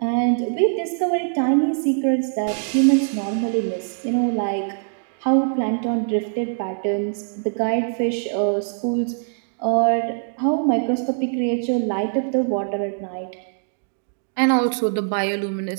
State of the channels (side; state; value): left; silent; digital silence